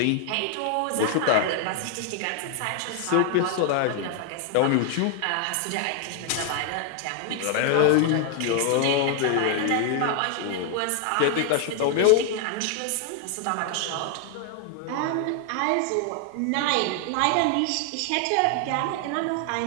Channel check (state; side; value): different; both; correlation 0.00